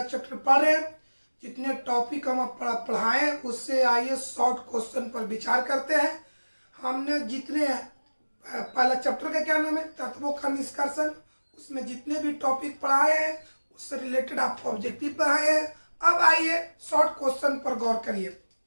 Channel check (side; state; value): both; inverted; correlation -1.00